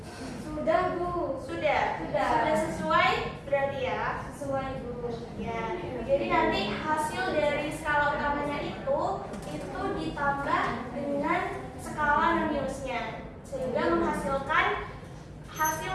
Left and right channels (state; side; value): identical; both; correlation 1.00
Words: Sudah, Bu. Sudah sesuai berarti ya? Sesuai, Bu. Ya. Jadi nanti hasil dari skala utamanya itu ditambah dengan skala minusnya sehingga menghasilkan